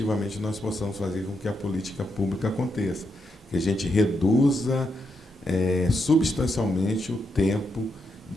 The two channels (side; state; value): both; normal; correlation 0.82